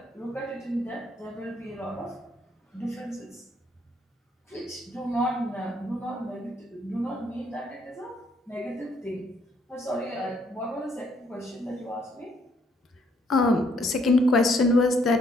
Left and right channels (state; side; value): normal; both; correlation 0.69